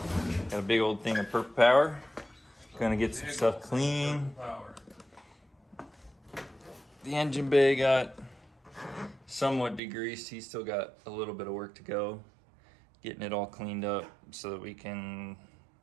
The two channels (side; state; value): left; drops out; at 9.8 s